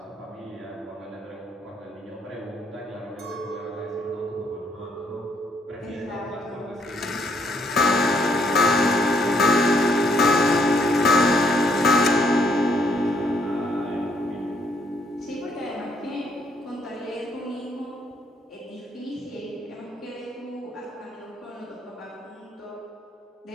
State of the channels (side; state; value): both; normal; correlation 0.70